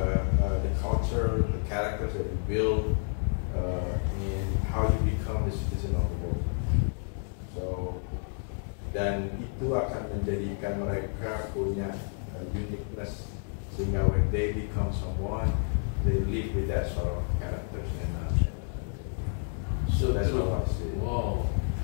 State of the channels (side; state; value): right; silent; 58 dB below the other